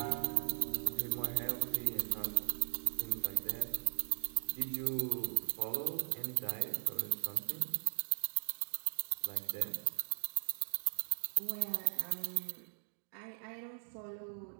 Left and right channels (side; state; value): left; silent; digital silence